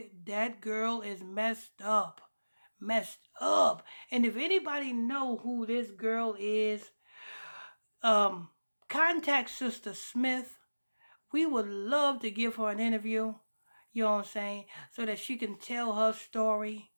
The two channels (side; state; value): both; inverted; correlation -1.00